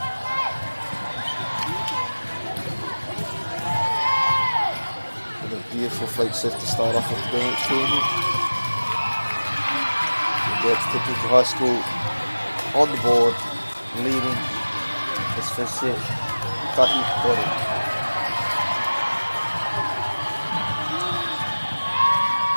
Beautiful flight shift to start off with the kēmu. That's Tepuki High School on the board, leading this first set. Tahi Kore.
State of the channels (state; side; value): inverted; both; correlation -1.00